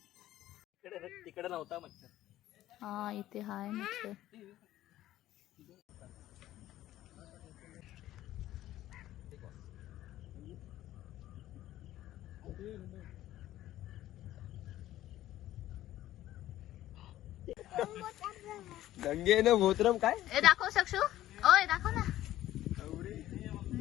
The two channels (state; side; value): quieter; right; 14.1 dB